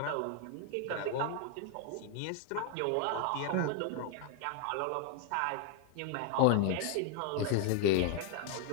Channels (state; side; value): different; both; correlation 0.01